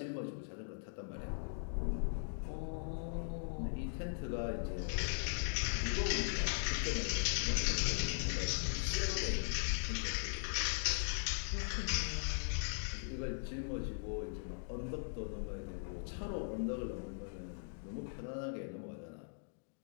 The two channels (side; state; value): right; silent; digital silence